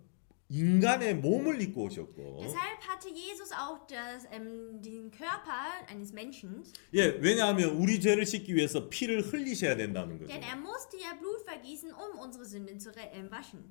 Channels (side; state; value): right; silent; digital silence